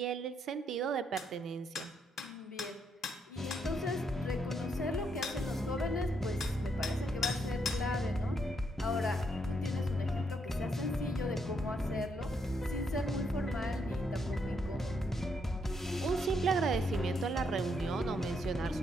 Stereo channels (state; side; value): normal; both; correlation 0.76